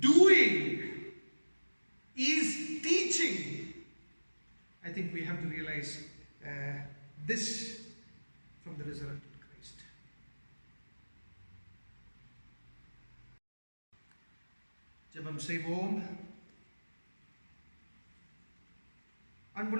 doing, is teaching. I think we have to realize this from the resurrected Christ. ஜெபம் செய்வோம்.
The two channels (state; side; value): inverted; both; correlation -1.00